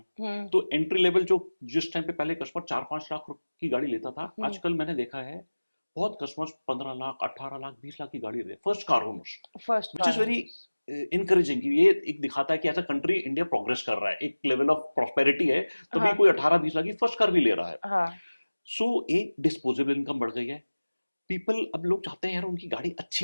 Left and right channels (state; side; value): inverted; both; correlation -1.00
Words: हम्म। तो एंट्री लेवल जो, जिस टाइम पे पहले कस्टमर 4-5 लाख की गाड़ी लेता था, हम्म। आजकल मैंने देखा है बहुत कस्टमर्स 15 लाख, 18 लाख, 20 लाख की गाड़ी ले, first car owners, first which is car. Very encouraging. ये एक दिखाता है कि as a country India progress कर रहा है, एक लेवल ऑफ प्रॉस्पेरिटी है, तभी हाँ। कोई 18-20 लाख की फर्स्ट कार भी ले रहा है। हाँ। सो एक डिस्पोजेबल इनकम बढ़ गई है। पीपल, अब लोग चाहते हैं यार उनकी गाड़ी